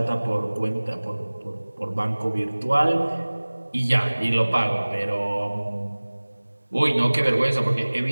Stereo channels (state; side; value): inverted; both; correlation -1.00